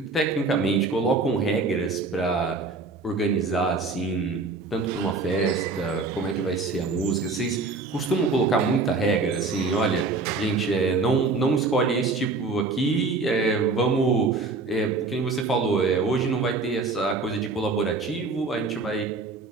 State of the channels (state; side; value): quieter; left; 3.8 dB